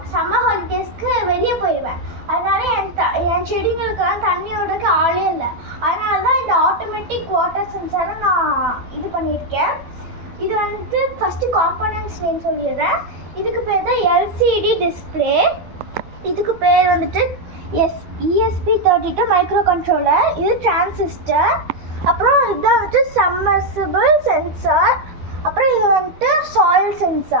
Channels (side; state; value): left; late; 12 ms